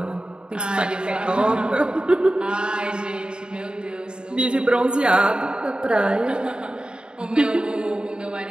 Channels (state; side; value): late; left; 0.050 ms